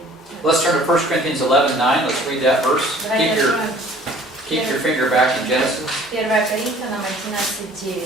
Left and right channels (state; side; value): normal; both; correlation 0.52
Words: Let's turn to 1 Corinthians 11:9. Let's read that verse. Давайте откроем Keep your finger back in Genesis. 1 Коринфянам